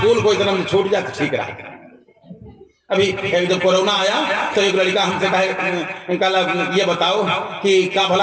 को इतना छूट जाए तो ठीक रहा। अभी जब कोरोना आया तो एक लड़का हमसे कहा ये बताओ कि क्या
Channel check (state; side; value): identical; both; correlation 1.00